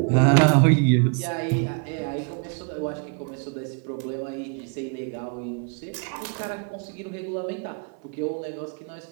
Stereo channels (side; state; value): left; quieter; 39.6 dB